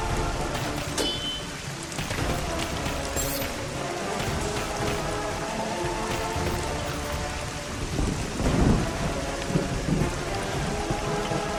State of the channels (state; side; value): identical; both; correlation 1.00